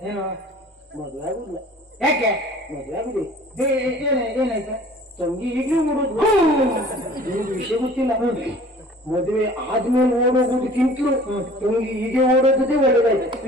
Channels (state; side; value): normal; both; correlation 0.48